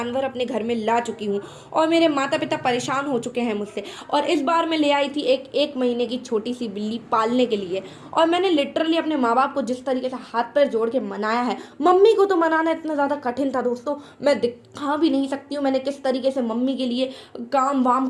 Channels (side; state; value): both; identical; correlation 1.00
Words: अपने घर में ला चुकी हूँ और मेरे माता-पिता परेशान हो चुके हैं मुझसे। और इस बार मैं ले आई थी एक 1 महीने की छोटी-सी बिल्ली पालने के लिए। और मैंने लिटरली अपने माँ-बाप को जिस तरीके से हाथ-पैर जोड़ के मनाया है, मम्मी को तो मनाना इतना ज़्यादा कठिन था दोस्तों, मैं दिखा भी नहीं सकती हूँ मैंने किस तरीके से मम्मी के लिए काम-वाम